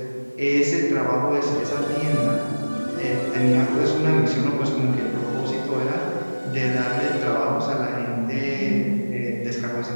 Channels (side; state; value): both; inverted; correlation -1.00